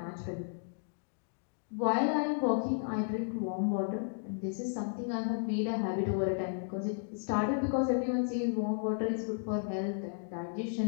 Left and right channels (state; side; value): silent; right; digital silence